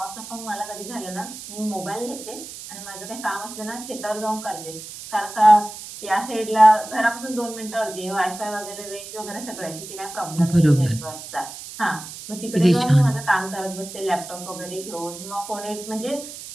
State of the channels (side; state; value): right; noise; hiss, 12 dB below the sound